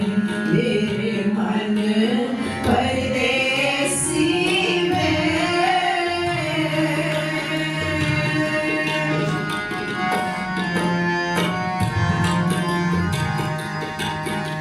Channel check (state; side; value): identical; both; correlation 1.00